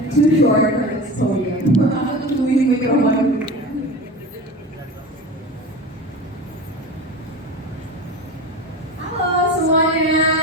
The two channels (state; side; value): normal; both; correlation 0.31